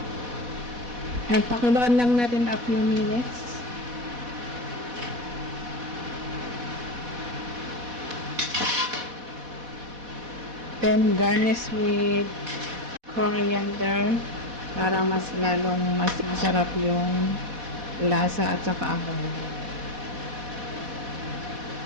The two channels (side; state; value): left; late; 4.1 ms